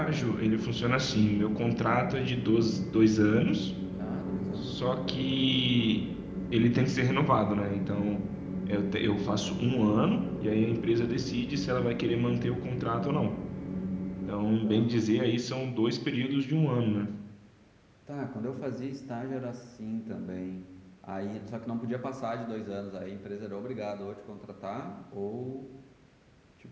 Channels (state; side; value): identical; both; correlation 1.00